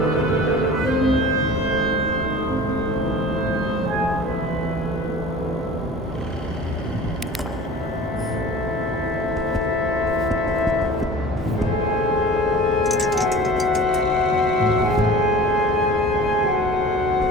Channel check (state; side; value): normal; both; correlation 0.41